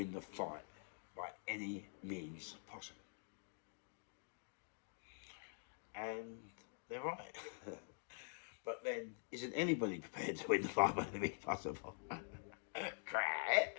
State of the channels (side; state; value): right; silent; digital silence